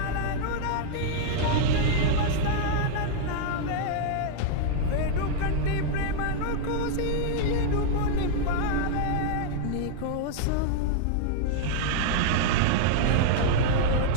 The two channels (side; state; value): both; different; correlation 0.00